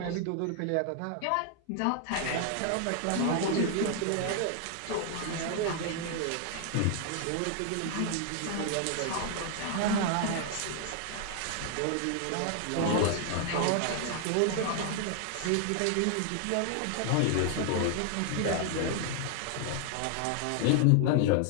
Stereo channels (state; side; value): different; both; correlation 0.00